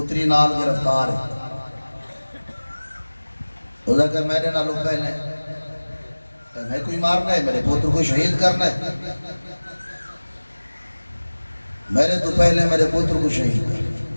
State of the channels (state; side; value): inverted; both; correlation -1.00